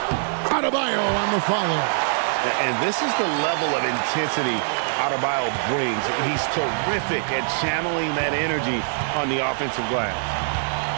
Adebayo on the follow. And this is the level of intensity Adebayo brings. He's terrific at channeling that energy on the offensive glass.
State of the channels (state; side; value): silent; left; digital silence